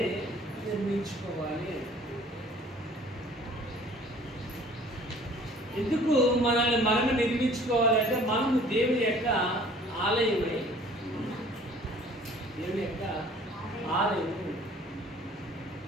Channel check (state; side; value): normal; both; correlation 0.52